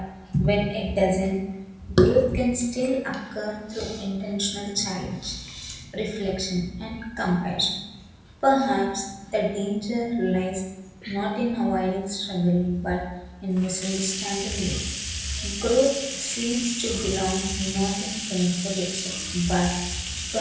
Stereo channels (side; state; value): both; identical; correlation 1.00